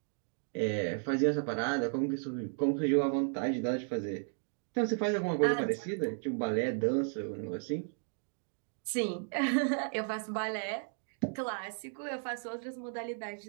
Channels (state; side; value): silent; left; 55 dB below the other